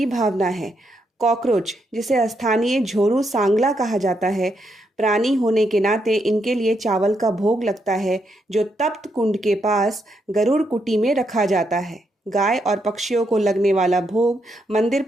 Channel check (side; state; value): both; normal; correlation 0.79